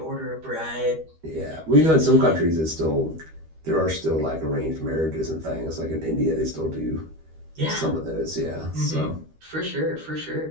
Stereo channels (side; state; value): left; late; 13 ms